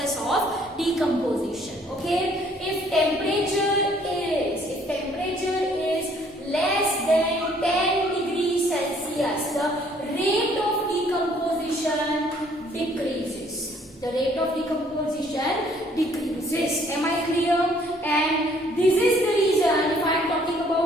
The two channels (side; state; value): both; normal; correlation 0.62